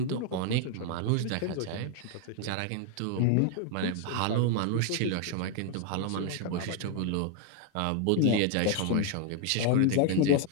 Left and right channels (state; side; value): different; both; correlation 0.00